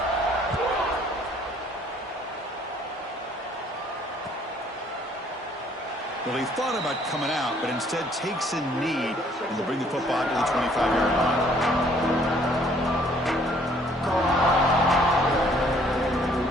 Well, he thought about coming out, but instead takes a knee and will bring the football to the 25-yard line.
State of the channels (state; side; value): normal; both; correlation 0.61